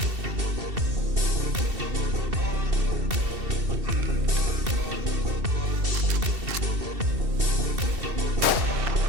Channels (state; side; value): late; left; 2.7 ms